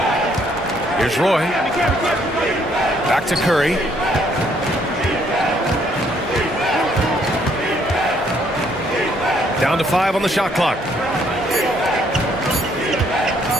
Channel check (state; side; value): normal; both; correlation 0.67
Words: Here's Roy. Back to Curry. Down to 5 on the shot clock.